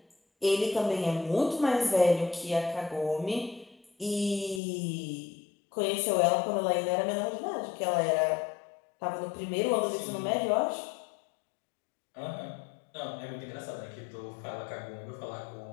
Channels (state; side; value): drops out; right; at 4.6 s